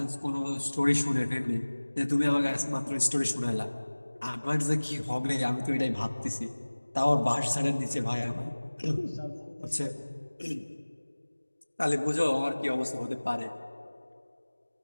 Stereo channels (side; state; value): both; inverted; correlation -1.00